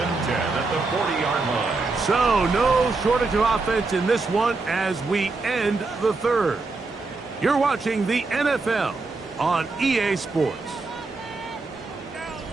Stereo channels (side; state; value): left; quieter; 3.7 dB